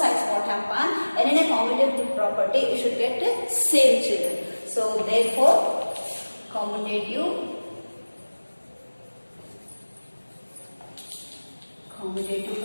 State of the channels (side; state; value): both; inverted; correlation -1.00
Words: what happen, and in a commutative property you should get the same, children. So therefore commutative